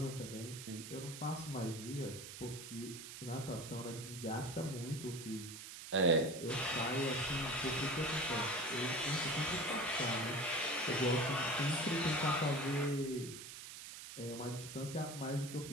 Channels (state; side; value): noise; right; hiss, 11 dB below the sound